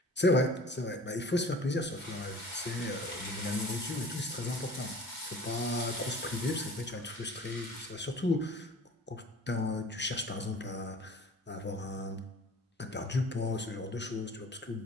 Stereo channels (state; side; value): normal; both; correlation 0.44